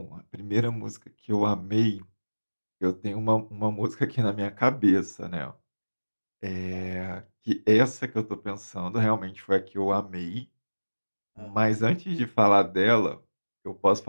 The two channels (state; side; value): inverted; both; correlation -1.00